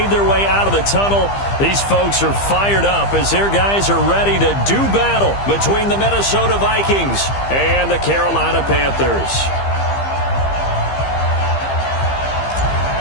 their way out of the tunnel. These folks are fired up as their guys are ready to do battle between the Minnesota Vikings and the Carolina Panthers.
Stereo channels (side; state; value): right; late; 15 ms